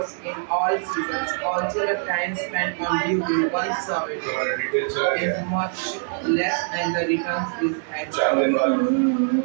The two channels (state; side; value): silent; left; 56 dB below the other